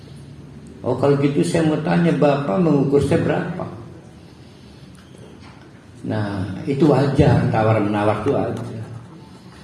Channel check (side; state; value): both; identical; correlation 1.00